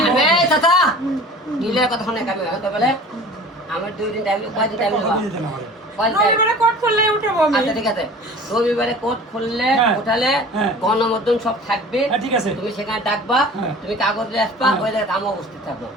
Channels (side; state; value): both; normal; correlation 0.42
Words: চাচা নীলের কথা শোনে কামি বলে আমার 2 দিন টাইম কয়দিন টাইম রবিবারে কোর্ট খুললে উঠাবো আমি আচ্ছা ঠিক আছে রবিবারে কোর্ট খুললে উঠালে গণমাধ্যম সব থাকবে ঠিক আছে তুমি সেখানে ডাকবা তুমি কাগজ নিয়ে আসবা ওই জায়গায় আমি উপস্থিত থাকবো